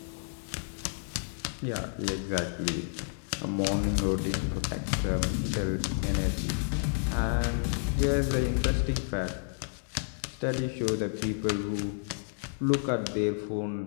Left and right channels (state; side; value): silent; right; digital silence